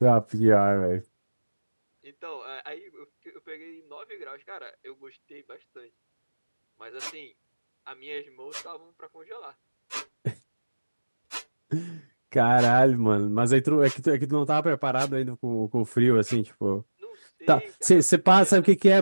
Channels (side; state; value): both; inverted; correlation -1.00